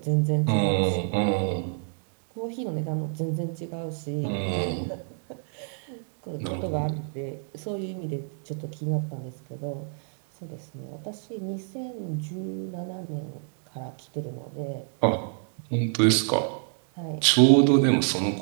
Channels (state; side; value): silent; left; 59 dB below the other